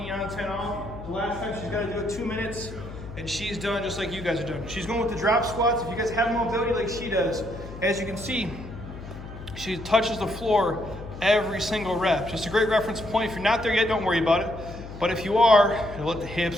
on, 10 off. The last time she's gotta do it 2 minutes, and she's done just like you guys are doing. She's going with the drop squats. If you guys have mobility like she does, as you can see, she touches the floor every single rep. Just a great reference point. If you're not there yet, don't worry about it. But if you are, you'll let the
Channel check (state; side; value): noise; left; hum, 12 dB below the sound